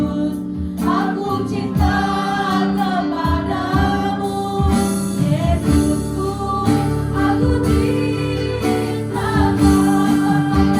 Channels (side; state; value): both; identical; correlation 1.00